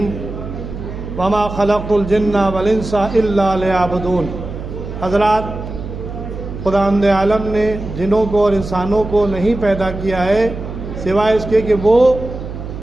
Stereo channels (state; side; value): noise; right; hum, 9 dB below the sound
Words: وما خلقت الجن والانس الا لیعبدون۔ حضرات، خداوند عالم نے جنوں کو اور انسانوں کو نہیں پیدا کیا ہے سوائے اس کے کہ وہ